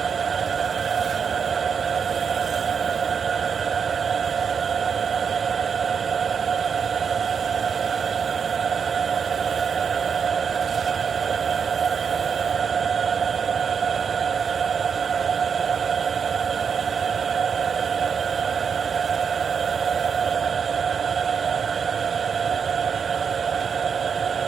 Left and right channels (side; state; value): left; quieter; 6.5 dB